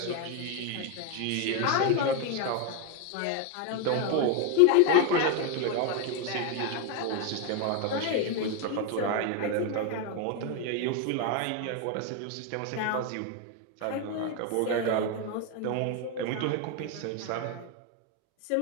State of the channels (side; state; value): both; different; correlation 0.01